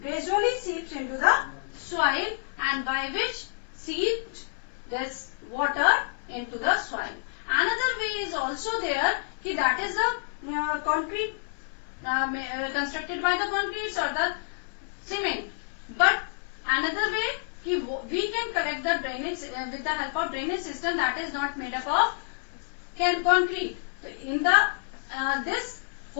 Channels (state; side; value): silent; right; 59 dB below the other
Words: gradually seeps into the soil, and by which seeps this water into the soil. Another way is also there, that is the concrete constructed by the concrete or the cement. But another way, we can collect the drainage with the help of drainage system that is not made up of concrete. So in the this